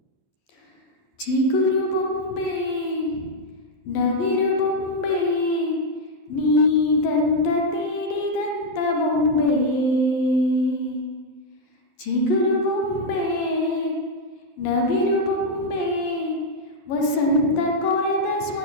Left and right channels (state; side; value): late; right; 11 ms